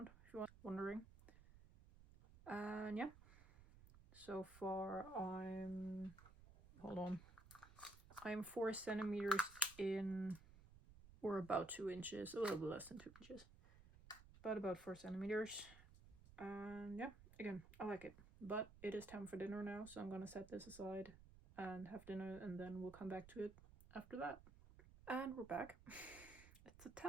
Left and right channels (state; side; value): noise; right; rumble, 19 dB below the sound